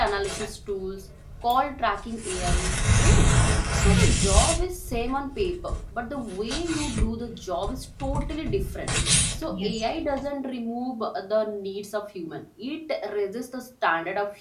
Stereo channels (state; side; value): identical; both; correlation 1.00